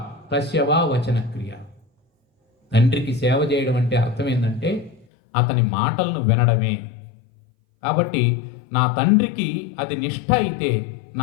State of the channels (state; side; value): drops out; right; at 5.1 s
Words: తస్యవా వచన క్రియ, తండ్రికి సేవ చేయడం అంటే అర్థం ఏంటంటే అతని మాటలను వినడమే. కాబట్టి నా తండ్రికి అది నిష్ఠ అయితే